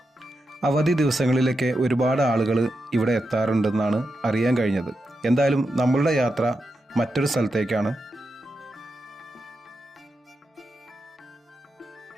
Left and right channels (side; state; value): both; normal; correlation 0.87